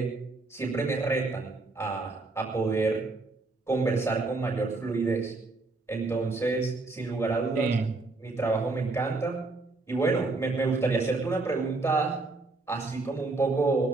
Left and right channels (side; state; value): left; quieter; 3.4 dB